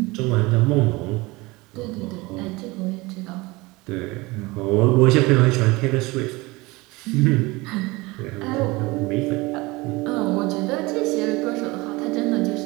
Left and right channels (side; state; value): left; quieter; 22.8 dB